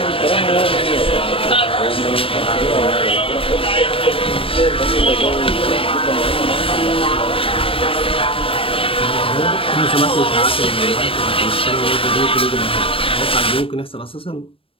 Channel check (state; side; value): late; right; 0.26 ms